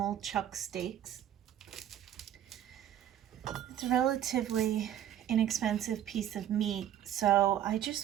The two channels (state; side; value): quieter; left; 11.0 dB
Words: chuck steaks. It's a relatively inexpensive piece of meat, so I